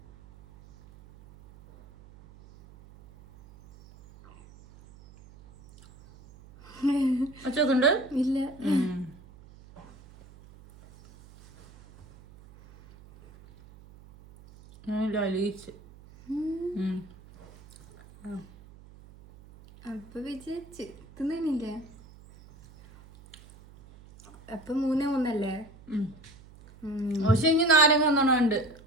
ഒച്ചൊക്കെ ഉണ്ട്? ഇല്ല. നല്ല അലിയിച്ച്. അപ്പൊ വിജയിച്ച് തിന്നില്ലേ? അപ്പൊ 3-3 പക്ഷെ ഇനി നാരങ്ങ ഒന്നുണ്ട്,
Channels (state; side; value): noise; right; hum, 23 dB below the sound